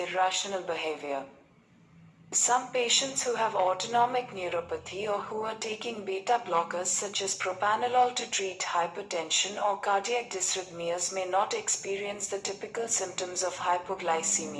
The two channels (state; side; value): identical; both; correlation 1.00